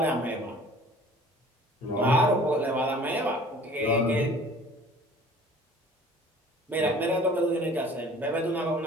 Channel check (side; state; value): both; normal; correlation 0.49